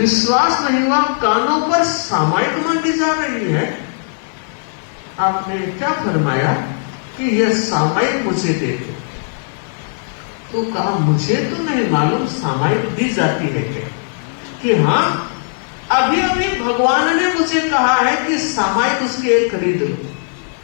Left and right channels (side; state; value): right; silent; 60 dB below the other